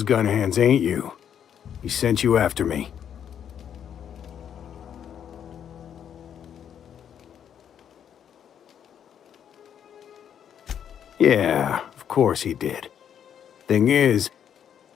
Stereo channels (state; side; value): quieter; right; 8.9 dB